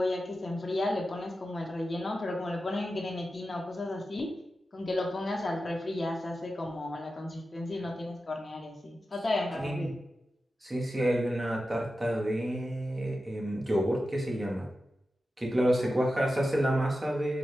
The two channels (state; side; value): normal; both; correlation 0.92